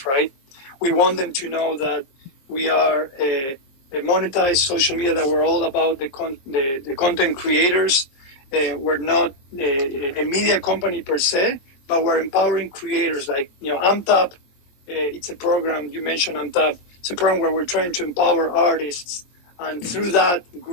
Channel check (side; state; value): right; late; 22 ms